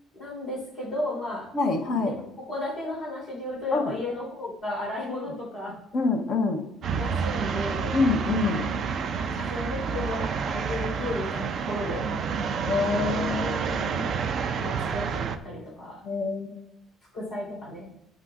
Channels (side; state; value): both; normal; correlation 0.60